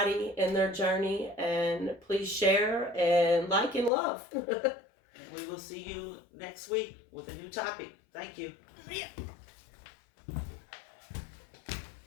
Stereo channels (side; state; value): right; drops out; at 3.9 s